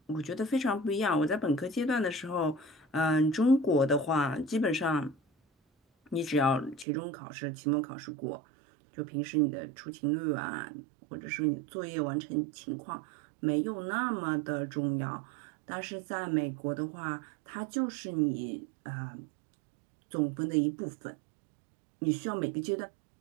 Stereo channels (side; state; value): left; drops out; at 6.9 s